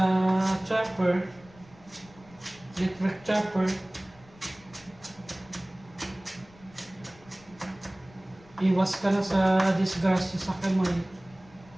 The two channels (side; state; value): left; noise; rumble, 25 dB below the sound